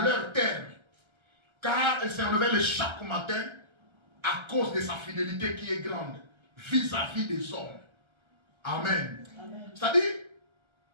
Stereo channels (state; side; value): late; left; 1.3 ms